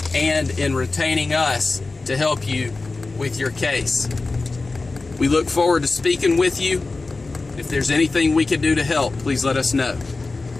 and in retaining us to help you with your case. We look forward to speaking with you. If there's anything we can do to help, please let us know.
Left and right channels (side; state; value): right; quieter; 3.6 dB